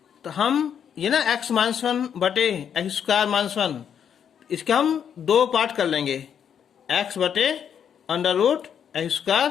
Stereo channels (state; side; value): quieter; right; 8.3 dB